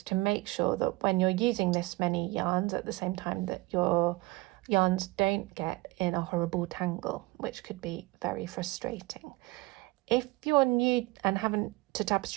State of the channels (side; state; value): left; quieter; 22.1 dB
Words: to make sure that when you're using this many yarns at the same time that your yarns don't get in a horrible tangle, which could be very frustrating. If you're new and haven't to